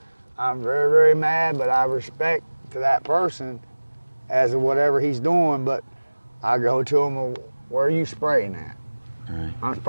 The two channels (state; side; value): inverted; both; correlation -1.00